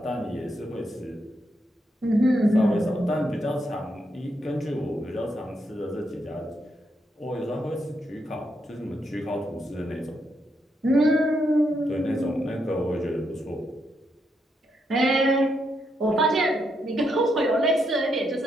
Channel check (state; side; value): normal; both; correlation 0.80